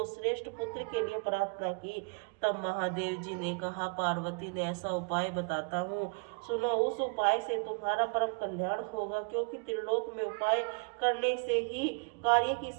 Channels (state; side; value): quieter; left; 35.4 dB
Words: श्रेष्ठ पुत्र के लिए प्रार्थना की। तब महादेव जी ने कहा, पार्वती ने ऐसा उपाय बताता हूँ, सुनो। उस उपाय से तुम्हारा परम कल्याण होगा, क्योंकि त्रिलोक में उपाय करने से ही कार्य की